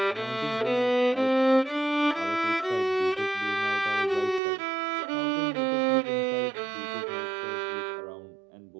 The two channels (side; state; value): left; drops out; at 4.4 s